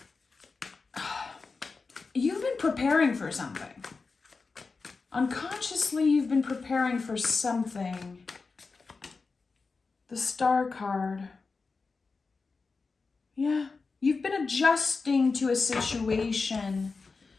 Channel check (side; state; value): right; quieter; 4.3 dB